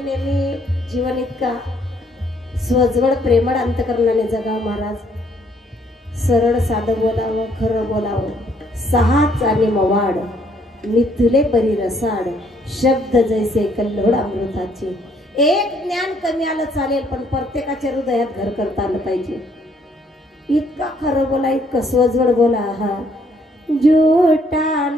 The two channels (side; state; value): both; normal; correlation 0.67